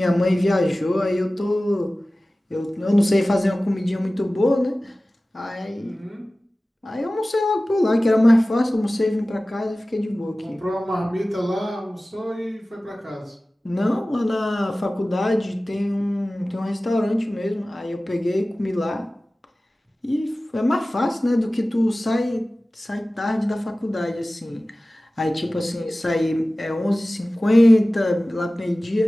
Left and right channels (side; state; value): both; normal; correlation 0.97